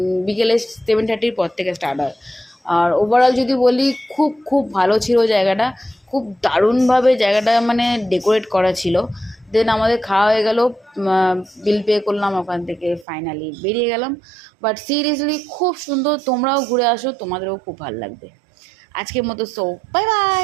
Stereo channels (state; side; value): drops out; left; at 13.1 s